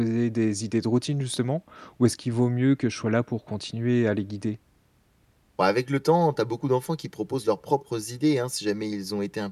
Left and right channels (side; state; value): both; identical; correlation 1.00